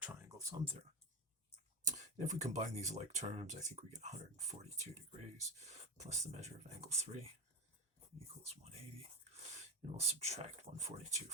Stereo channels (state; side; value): normal; both; correlation 0.20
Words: sum theorem. And if we combine these like terms, I think we get 142 degrees plus the measure of angle 3 equals 180, and we'll subtract 142